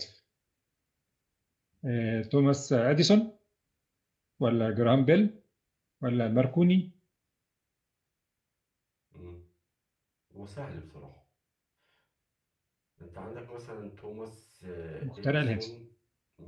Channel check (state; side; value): identical; both; correlation 1.00